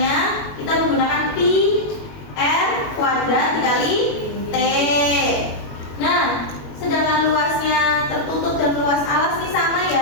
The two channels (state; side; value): late; right; 21 ms